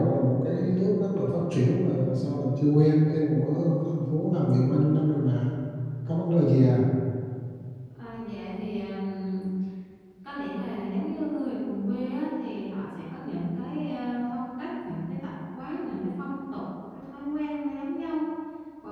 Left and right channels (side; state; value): both; identical; correlation 1.00